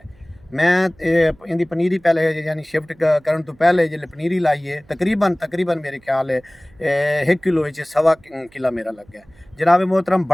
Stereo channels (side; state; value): right; noise; hum, 29 dB below the sound